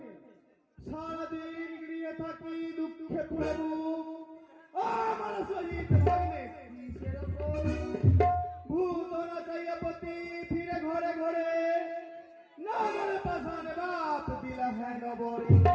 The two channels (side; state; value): both; identical; correlation 1.00